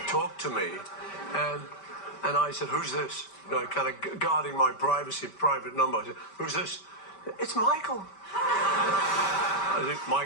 talked to me, and I said, "Who's this?" You know, kind of guarding my privacy, private number. I said, "Who's this?" "It's Michael." I said,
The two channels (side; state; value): right; late; 5.1 ms